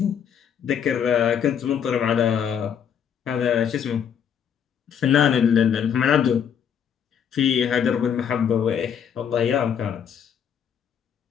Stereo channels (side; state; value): right; quieter; 8.1 dB